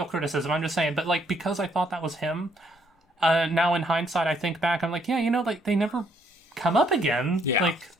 criticism, I'm just saying, but, like, because I thought that was him, now in hindsight I think back, I'm like, yeah, like, they never come up again. Yeah. Like,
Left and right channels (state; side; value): normal; both; correlation 0.70